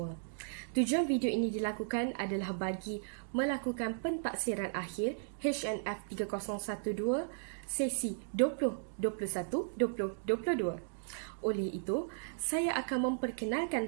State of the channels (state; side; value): silent; left; digital silence